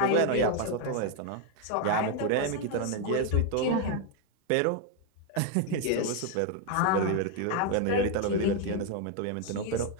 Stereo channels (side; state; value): both; different; correlation 0.01